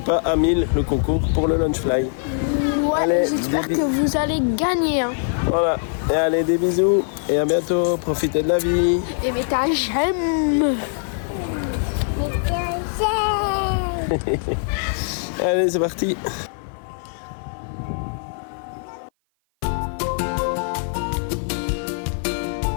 à 1000 le concours pour le Lunchfly. Ouais, j'espère que vous allez gagner. Hein. Voilà, et allez des bisous et à bientôt, profitez de la vie. Et mettez un j'aime. Allez c'est parti.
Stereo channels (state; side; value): silent; right; 55 dB below the other